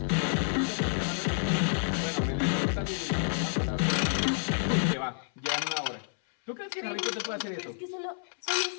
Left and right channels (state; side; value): silent; right; 58 dB below the other